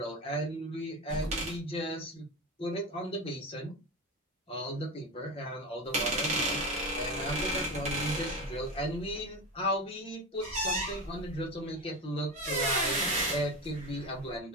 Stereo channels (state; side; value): normal; both; correlation 0.22